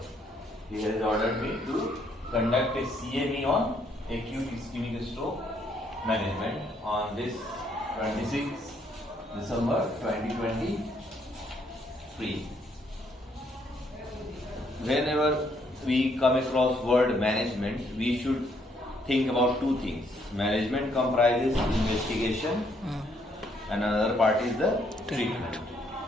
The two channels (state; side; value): normal; both; correlation 0.70